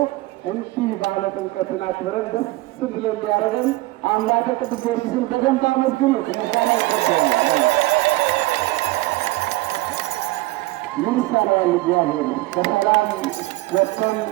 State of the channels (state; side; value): quieter; left; 19.5 dB